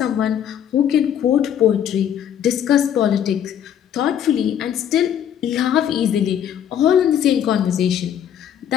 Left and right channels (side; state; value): right; quieter; 9.6 dB